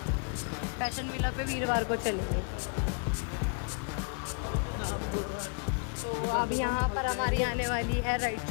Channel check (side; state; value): right; quieter; 38.2 dB